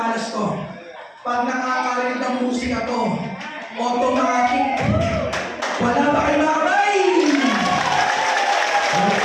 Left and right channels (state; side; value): identical; both; correlation 1.00